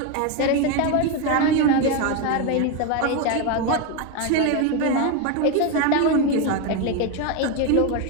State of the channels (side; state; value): both; different; correlation 0.02